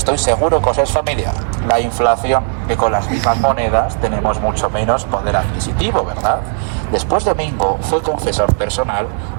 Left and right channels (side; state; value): left; silent; digital silence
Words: seguro que os es familiar: la inflación, que con las mismas monedas tenemos mucho menos poder adquisitivo, ¿verdad? Después Domingo fue confesor personal